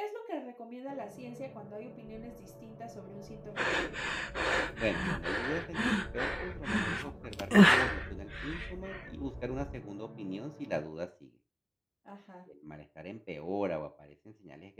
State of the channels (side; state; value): both; identical; correlation 1.00